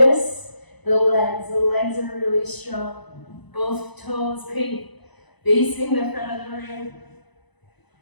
the legs are really strong. Both toes facing the front of the room.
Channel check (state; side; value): late; right; 1.0 ms